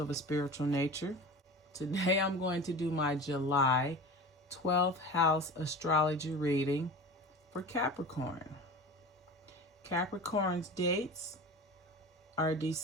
a spiritual nature. Today I'm going to do my July 12th house astrology reading for Capricorn. Capricorn's dates are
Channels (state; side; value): normal; both; correlation 0.33